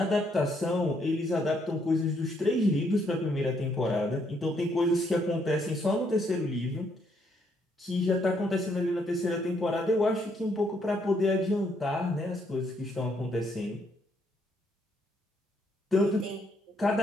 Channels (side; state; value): both; normal; correlation 0.72